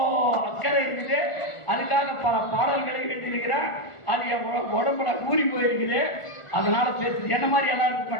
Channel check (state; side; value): late; right; 1.4 ms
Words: அக்கறை இருக்குது. அதுக்காக பல பாடல்களை எழுதியிருக்கிறேன். அது என் உடம்புல ஊறி போயிருக்குது. அதனால பேசுறது என்ன மாதிரி எல்லாம் இருக்க